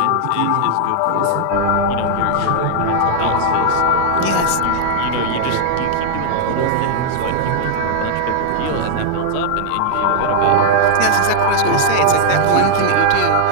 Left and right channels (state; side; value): different; both; correlation -0.01